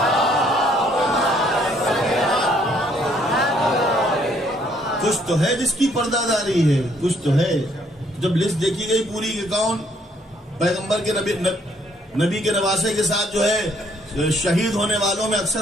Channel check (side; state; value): both; normal; correlation 0.66